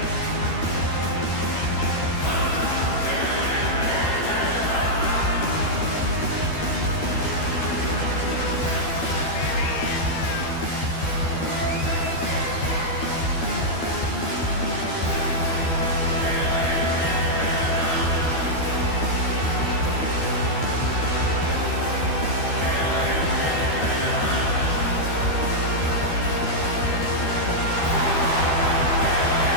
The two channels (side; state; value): right; late; 12 ms